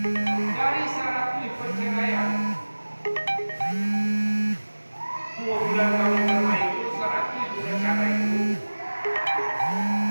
Dari syarat perceraian 2 bulan kami bermain itu 100 sudah cara itu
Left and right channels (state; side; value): inverted; both; correlation -1.00